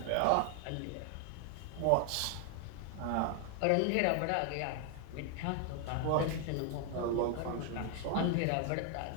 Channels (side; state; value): both; different; correlation 0.00